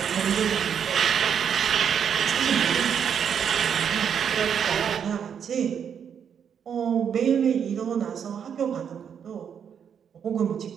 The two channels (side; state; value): left; quieter; 7.8 dB